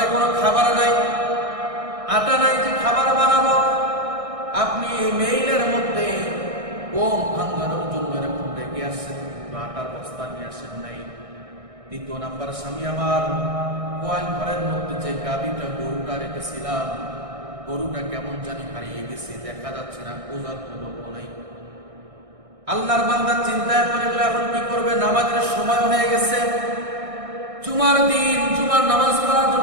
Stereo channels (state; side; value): late; left; 1.6 ms